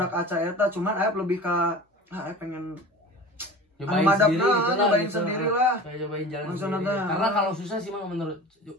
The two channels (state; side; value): normal; both; correlation 0.36